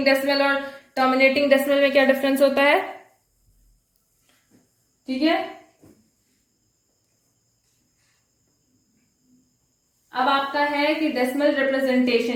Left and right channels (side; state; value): both; identical; correlation 1.00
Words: डेसिमल और टर्मिनेटिंग डेसिमल में क्या डिफरेंस होता है, ठीक है। अब आपका है कि डेसिमल